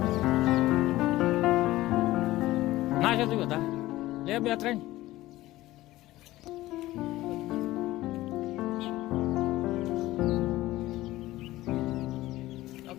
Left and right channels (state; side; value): quieter; right; 16.9 dB